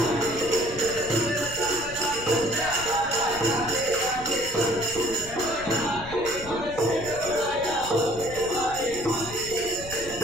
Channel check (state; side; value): noise; left; rumble, 14 dB below the sound